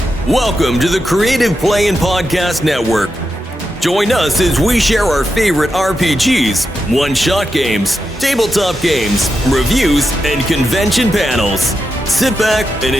Welcome to the Creative Play and Podcast Network. Join us as we share our favorite RPGs, one-shot games, tabletop games, reviews, and convention panels. Sit back and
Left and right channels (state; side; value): normal; both; correlation 0.87